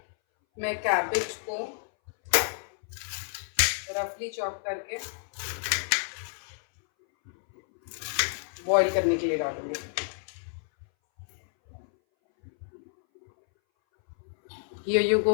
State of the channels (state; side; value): silent; right; 58 dB below the other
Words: मैं कैबेज को रफली चॉप करके बॉईल करने के लिए डालूंगी। Here you